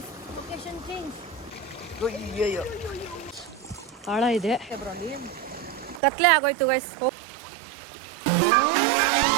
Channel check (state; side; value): drops out; left; at 6.0 s